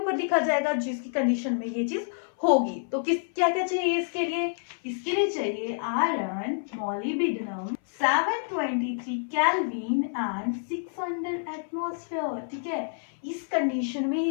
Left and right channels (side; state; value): right; silent; 57 dB below the other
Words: लिखा जाएगा जिसकी कंडीशन में ये चीज होगी। तो किस क्या क्या चाहिए इसके लिए, इसके लिए चाहिए iron, molybdenum 723 kelvin and 600 atmosphere, ठीक है। इस कंडीशन में